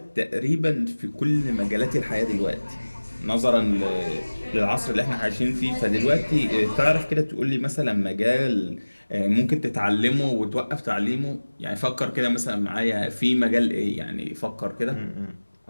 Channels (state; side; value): inverted; both; correlation -1.00